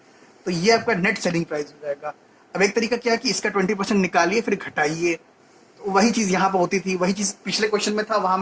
तो ये आपका नेट सेलिंग प्राइस हो जाएगा। अब एक तरीका क्या है कि इसका 20% निकालिए फिर घटाइए। तो वही चीज़ यहाँ पर होती थी, वही चीज़ पिछले क्वेश्चन में था, वहाँ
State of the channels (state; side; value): identical; both; correlation 1.00